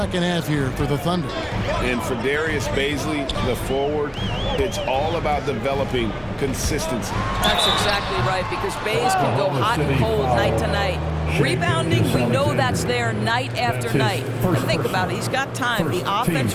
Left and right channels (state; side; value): identical; both; correlation 1.00